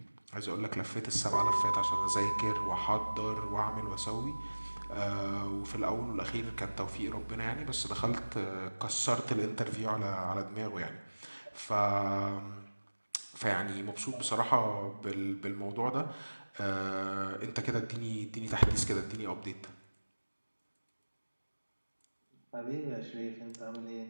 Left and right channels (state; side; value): inverted; both; correlation -1.00